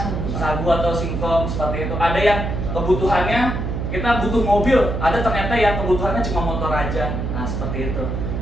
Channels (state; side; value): noise; right; hum, 3 dB below the sound